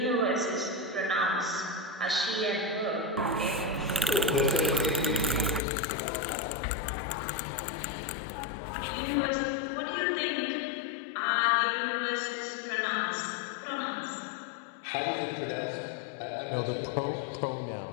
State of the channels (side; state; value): right; drops out; at 5.6 s